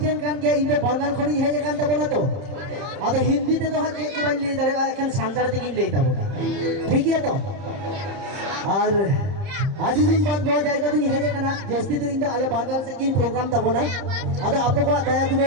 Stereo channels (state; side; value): late; left; 30 ms